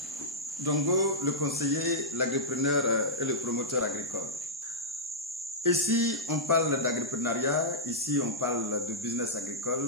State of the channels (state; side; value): normal; both; correlation -0.10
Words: Dongo, le conseiller, l'agripreneur et le promoteur agricole. Ici, on parle d'agripreneuriat, ici, on parle de business